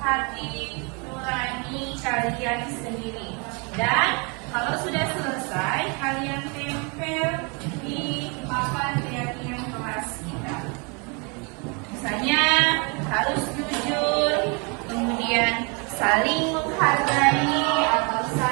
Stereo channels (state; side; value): quieter; left; 32.4 dB